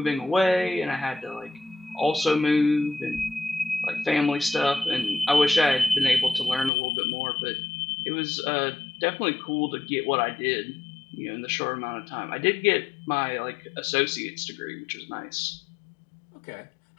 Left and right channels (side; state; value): right; drops out; at 6.7 s